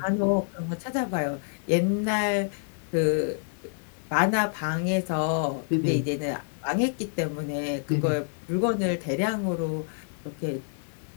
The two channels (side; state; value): right; silent; digital silence